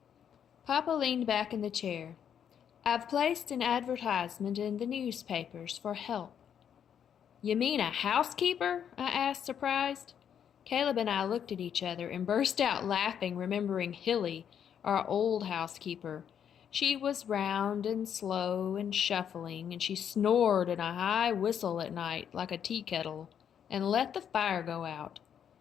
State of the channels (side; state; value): right; quieter; 8.6 dB